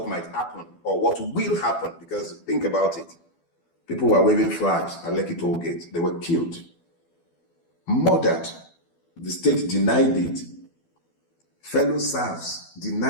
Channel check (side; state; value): right; late; 12 ms